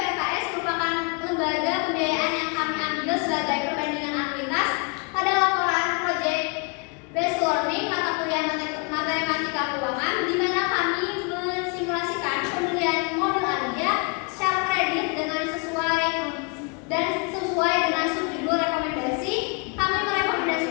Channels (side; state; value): right; quieter; 33.7 dB